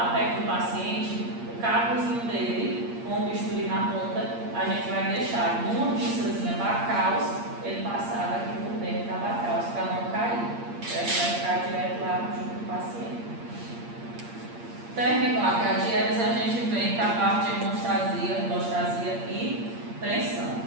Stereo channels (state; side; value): late; left; 8.6 ms